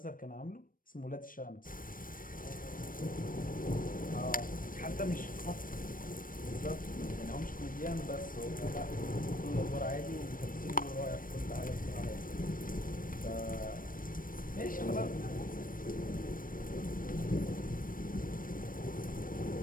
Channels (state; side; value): late; right; 0.40 ms